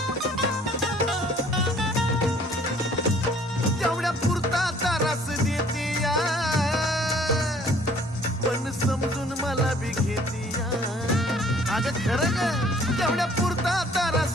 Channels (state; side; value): normal; both; correlation 0.57